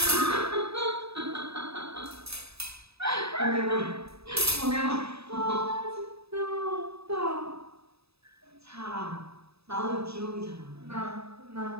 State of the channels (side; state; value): left; late; 0.78 ms